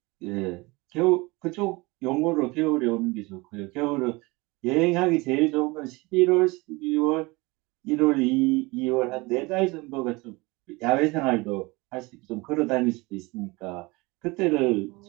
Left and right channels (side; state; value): left; quieter; 24.2 dB